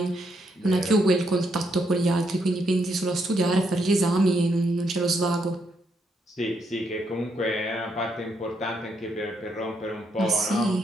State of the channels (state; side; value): normal; both; correlation 0.77